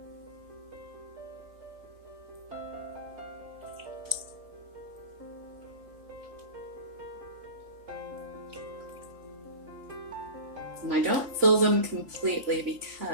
And I don't fill them completely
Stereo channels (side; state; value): left; late; 3.6 ms